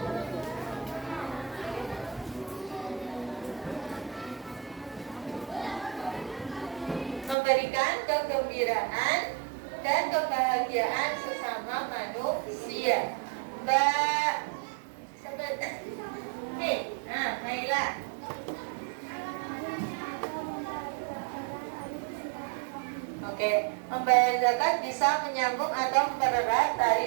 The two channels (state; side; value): drops out; left; at 7.4 s